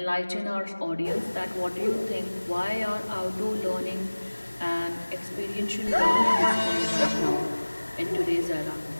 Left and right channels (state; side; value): inverted; both; correlation -1.00